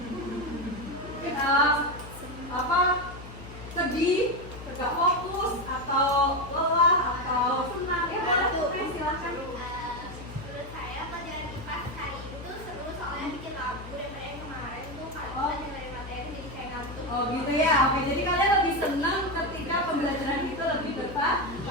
Sedih, gak fokus, atau lelah, atau senang? Ya, boleh tuh, silakan. Menurut saya pelajaran IPA hari itu seru soalnya bikin lagu daripada yang kemarin tuh kalau kita dengerin materi jadi kayak ngantuk. Oh gitu ya, oke. Jadi kalian lebih senang ketika pembelajaran itu lebih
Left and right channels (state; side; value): noise; left; hum, 14 dB below the sound